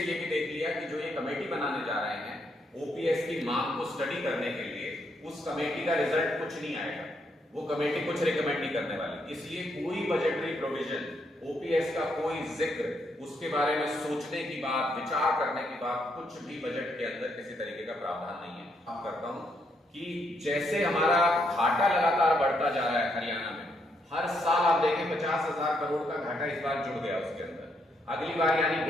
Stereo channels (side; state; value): both; normal; correlation 0.76